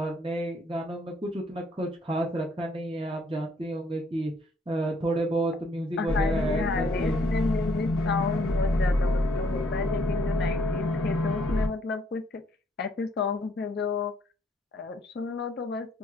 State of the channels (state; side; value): normal; both; correlation 0.67